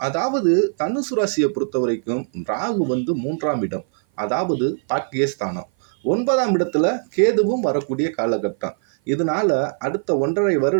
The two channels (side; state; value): left; silent; 56 dB below the other